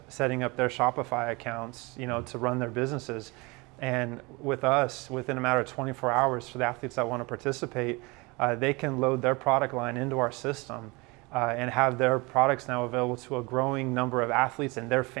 up their Shopify accounts, to run their businesses. And with us, within a matter of 24 hours, for the athletes that want to participate, they can load their product line into our system and have their products now available to a growing number of athletes and their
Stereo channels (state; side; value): quieter; left; 26.0 dB